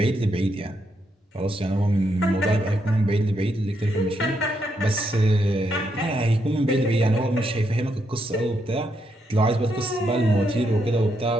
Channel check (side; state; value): both; normal; correlation 0.79